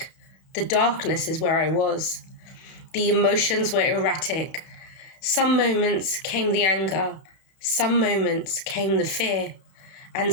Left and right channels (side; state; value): right; late; 32 ms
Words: the darkness is where I was. The emotions were erratic. Some moments came the anger, some moments came the fear, and